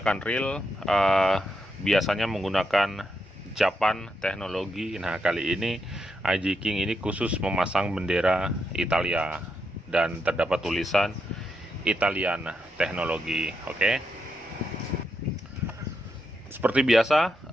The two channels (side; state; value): both; normal; correlation 0.83